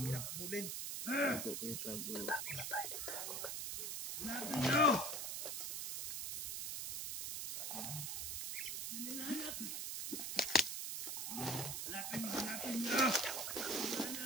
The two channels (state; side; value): noise; right; hiss, 3 dB below the sound